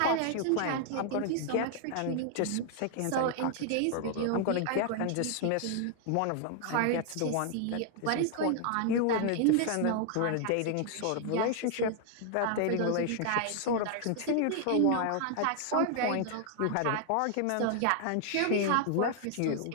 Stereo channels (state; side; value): different; both; correlation 0.00